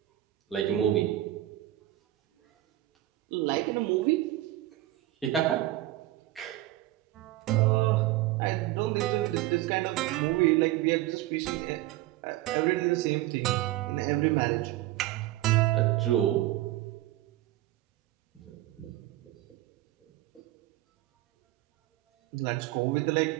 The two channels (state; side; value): quieter; left; 15.7 dB